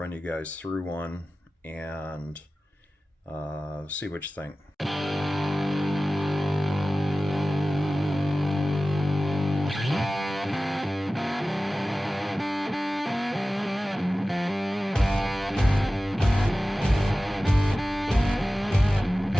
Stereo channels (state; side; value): normal; both; correlation 0.96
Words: you guys through one and see what you think.